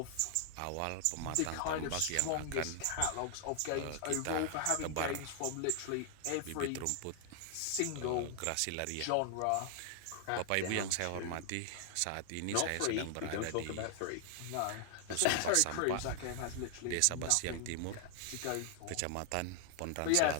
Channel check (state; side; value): different; both; correlation 0.00